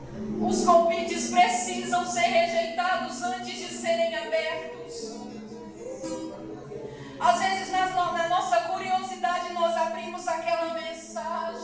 Os convites precisam ser rejeitados antes de serem abertos. Às vezes, na nossa curiosidade, nós abrimos aquela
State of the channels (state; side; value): identical; both; correlation 1.00